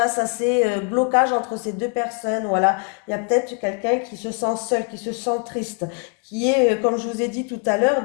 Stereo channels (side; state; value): right; quieter; 38.3 dB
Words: à ces blocages entre ces deux personnes. Voilà, il y a peut-être quelqu'un qui se sent seul, qui se sent triste, qui est, comme je vous ai dit tout à l'heure,